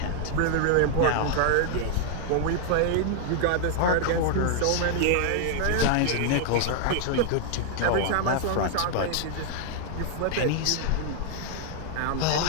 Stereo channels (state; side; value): different; both; correlation 0.00